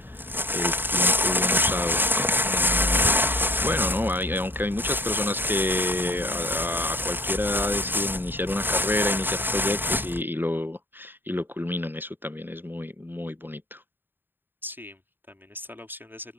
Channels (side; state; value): left; late; 0.096 ms